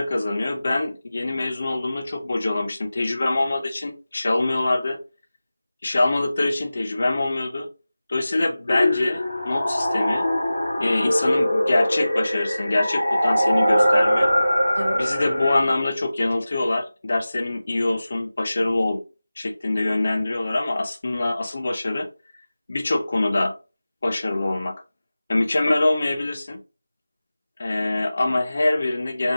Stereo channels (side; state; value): both; inverted; correlation -0.96